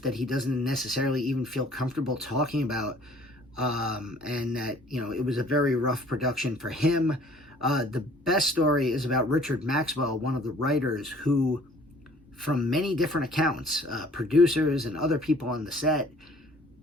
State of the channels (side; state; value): both; normal; correlation 0.54